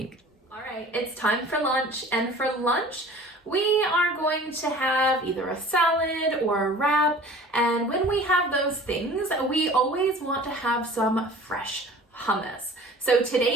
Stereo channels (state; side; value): normal; both; correlation 0.45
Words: All right, it's time for lunch. And for lunch, we are going to have either a salad or a wrap. And when we have those things, we always want to have some fresh hummus. So